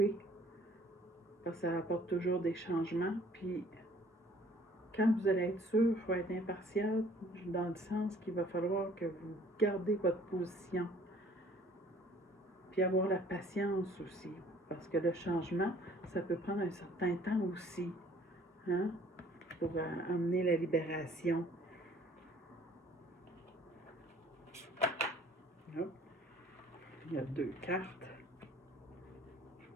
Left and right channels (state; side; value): normal; both; correlation 0.56